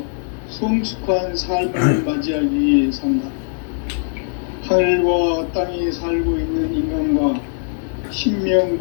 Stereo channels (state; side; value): silent; right; 61 dB below the other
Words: 성숙한 삶을 맞이하기 위해 산다. 하늘과 땅에 살고 있는 인간과 신명